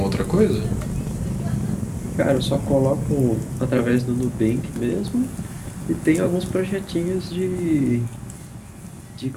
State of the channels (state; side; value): identical; both; correlation 1.00